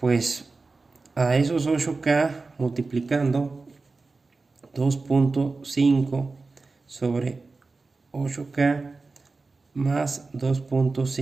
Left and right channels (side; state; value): left; quieter; 3.8 dB